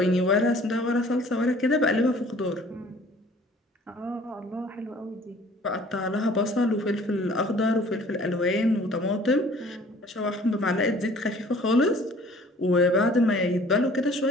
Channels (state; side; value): normal; both; correlation 0.52